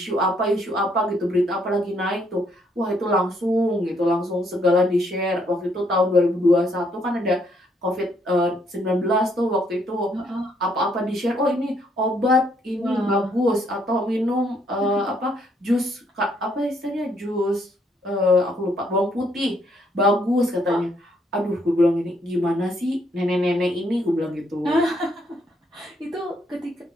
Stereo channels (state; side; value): normal; both; correlation 0.70